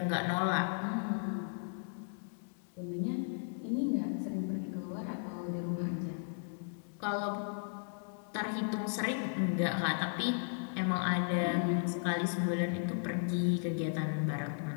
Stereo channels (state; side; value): silent; right; digital silence